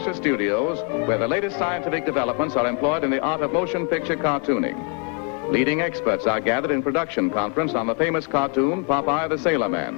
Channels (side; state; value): right; quieter; 36.3 dB